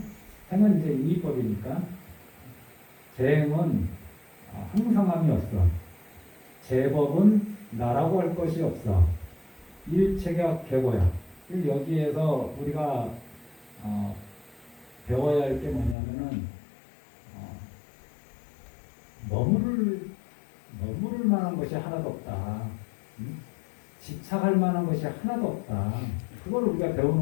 이제 인위법이니까 재행은 항상함이 없어. 재법은 나라고 할 것이 없어. 일체가 계고야. 여기에서 우리가 배워야 할 게 뭐냐면은 머무를 만한 것이 하나도 없다. 집착할 만한 것이 하나도 없다. 그걸 우리가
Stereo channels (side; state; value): right; drops out; at 16.0 s